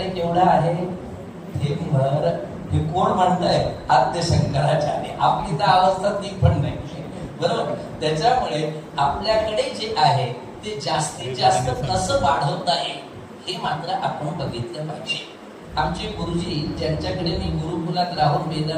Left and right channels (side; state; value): both; identical; correlation 1.00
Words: केवढं आहे हे भर. हे कोण म्हणताय आद्य शंकराचार्य. आपली तर अवस्था ती पण नाही बरोबर. त्याच्यामुळे आपल्याकडे जे आहे ते जास्तीत जास्त कसं वाढवता येईल हे मात्र आपण बघितलं पाहिजे. आमचे गुरुजी ज्यांच्याकडे मी गुरुकुलात राहून